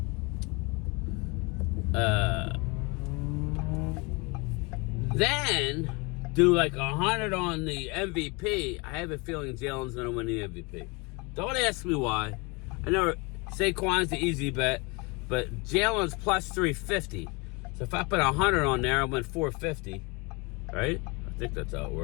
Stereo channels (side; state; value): right; quieter; 28.3 dB